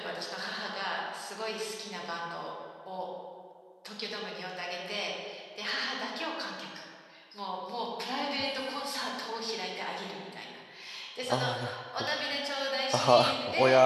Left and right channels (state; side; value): identical; both; correlation 1.00